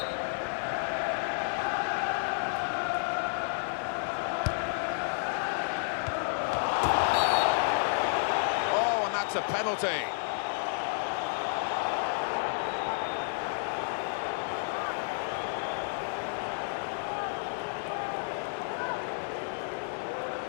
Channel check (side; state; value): right; silent; digital silence